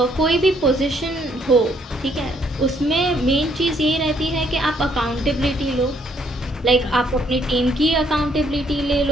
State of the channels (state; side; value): normal; both; correlation 0.68